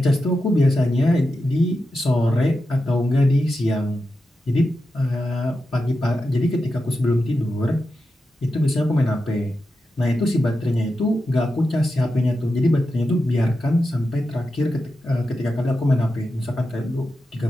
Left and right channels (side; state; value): both; normal; correlation 0.89